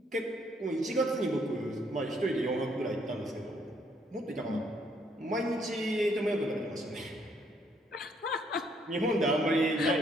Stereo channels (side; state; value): both; normal; correlation 0.69